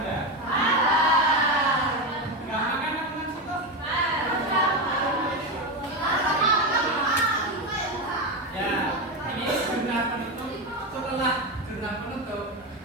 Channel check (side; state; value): both; normal; correlation 0.15